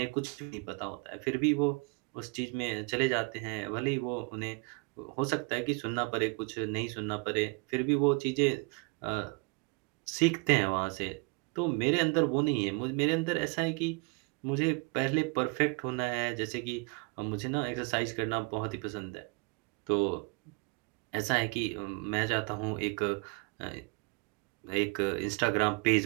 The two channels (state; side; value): quieter; left; 30.6 dB